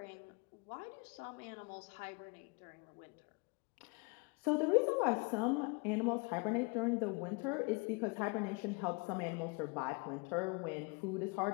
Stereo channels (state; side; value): quieter; right; 30.0 dB